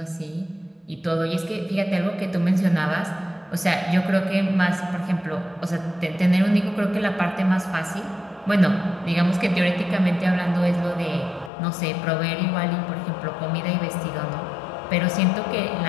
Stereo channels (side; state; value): right; drops out; at 11.5 s